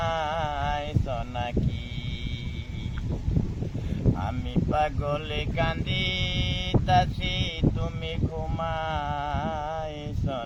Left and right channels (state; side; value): identical; both; correlation 1.00